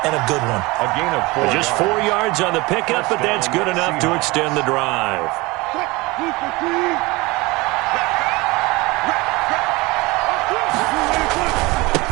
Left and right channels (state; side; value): quieter; left; 23.1 dB